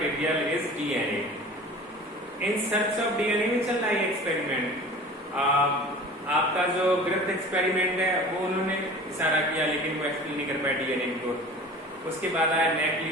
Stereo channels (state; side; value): normal; both; correlation 0.40